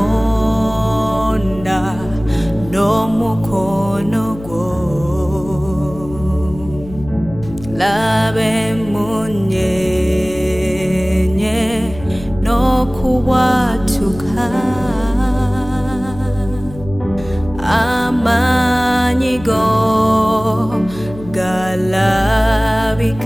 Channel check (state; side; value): noise; left; hum, 15 dB below the sound